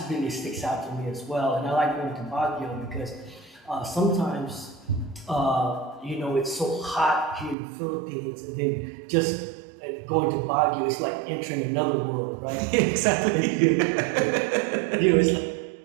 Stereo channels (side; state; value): left; drops out; at 7.6 s